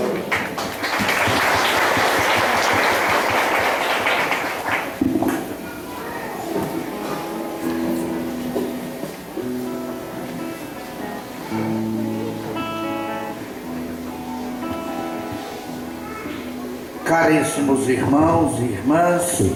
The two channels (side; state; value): both; identical; correlation 1.00